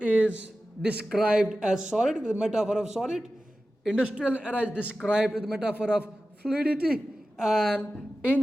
is described as solid with the metaphor of solid. Industrial era is described with the metaphor of fluidity, and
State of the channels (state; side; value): normal; both; correlation 0.94